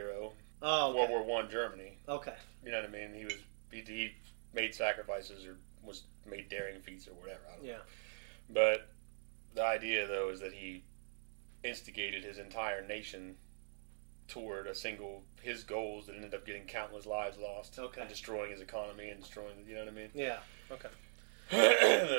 Oh, okay. World War One Germany. Okay. You know what I mean? He made sacrifices or made daring feats or whatever. I don't know. But the idea, though, is that he instigated his entire nation toward his goals that ended up getting countless lives lost. Okay. And destroying his economy and destroying, you know what I mean? Yeah. Okay.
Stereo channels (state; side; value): silent; left; digital silence